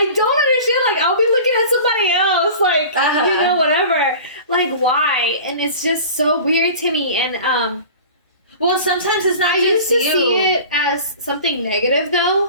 don't understand. Like I'll be looking at somebody else, like you know, whatever. Like why? And it's just so weird to me. And well, sometimes it's not I just used to you. see it as something negative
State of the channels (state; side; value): inverted; both; correlation -0.39